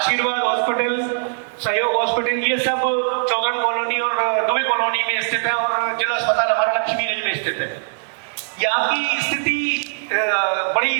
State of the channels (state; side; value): silent; left; 62 dB below the other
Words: हॉस्पिटल, सहयोग हॉस्पिटल, ये सब चौगन कॉलोनी और दुबे कॉलोनी में स्थित है, और जिला अस्पताल हमारा लक्ष्मीगंज में स्थित है। यहाँ की स्थिति